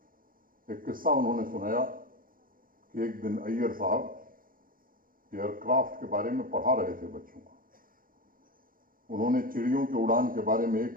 एक किस्सा उन्होंने सुनाया कि एक दिन अय्यर साहब एयरक्राफ्ट के बारे में पढ़ा रहे थे बच्चों को। उन्होंने चिड़ियों की उड़ान के बारे में 1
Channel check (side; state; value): left; late; 0.41 ms